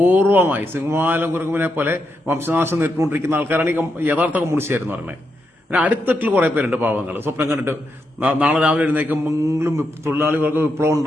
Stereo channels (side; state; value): both; normal; correlation 0.83